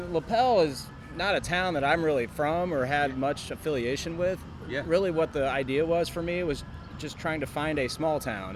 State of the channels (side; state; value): both; identical; correlation 1.00